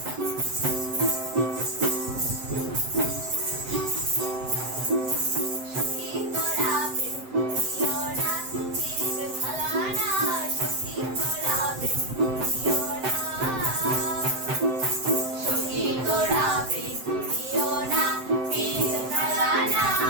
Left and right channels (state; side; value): late; left; 7.8 ms